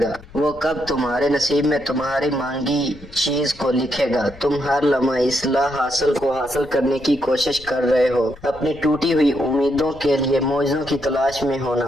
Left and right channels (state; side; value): noise; left; rumble, 21 dB below the sound